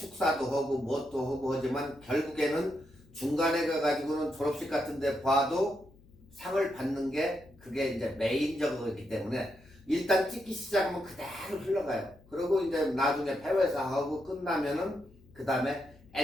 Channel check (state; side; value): noise; left; hum, 26 dB below the sound